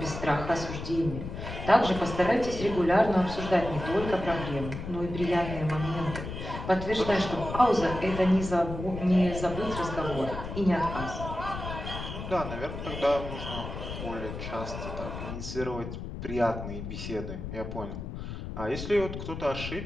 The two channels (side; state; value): left; noise; rumble, 7 dB below the sound